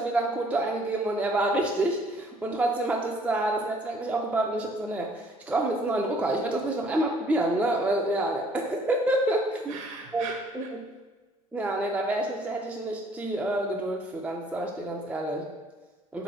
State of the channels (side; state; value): both; normal; correlation 0.60